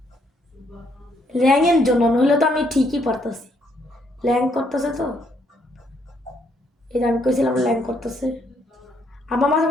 ল্যাংয়ের জন্য, নইলে তো আমি ঠিকই পারতাছি, ল্যাং করতেছে তো, এটা আমি কইছিলাম ল্যাং করতেছে। আমার মাঝে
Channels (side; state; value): both; normal; correlation 0.71